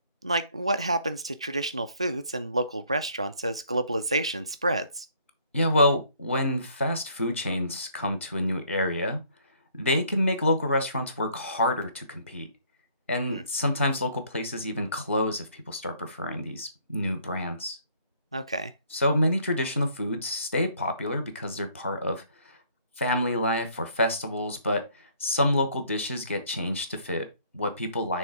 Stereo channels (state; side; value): inverted; both; correlation -0.62